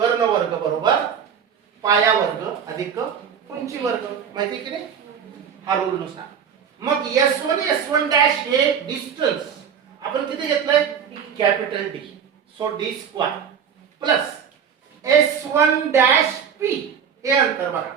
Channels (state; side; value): quieter; left; 7.6 dB